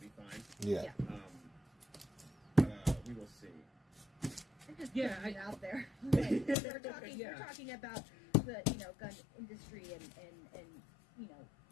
fine. Yeah. But we will see. I'm just putting it out there. We're talking about the gun industry and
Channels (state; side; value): drops out; right; at 6.6 s